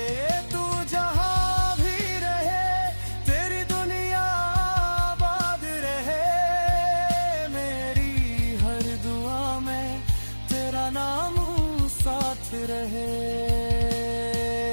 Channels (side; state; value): both; inverted; correlation -1.00